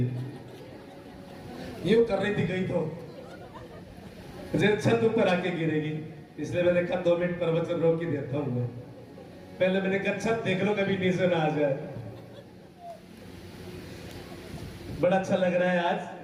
यूं कर रही थी, गई तो जैसे छत ऊपर आके गिरेगी। इसलिए मैंने कहा 2 मिनट प्रवचन रोक ही देता हूं मैं। पहले मैंने कहा छत देख लो, कभी नीचे ना आ जाए। बड़ा अच्छा लग रहा है।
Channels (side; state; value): both; identical; correlation 1.00